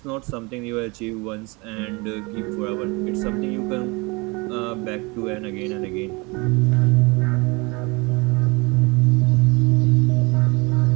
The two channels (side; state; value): left; quieter; 27.0 dB